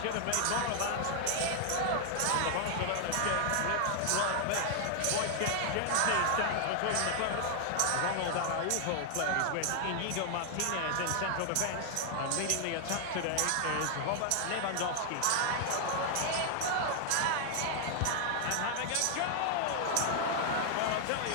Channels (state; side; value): different; both; correlation 0.00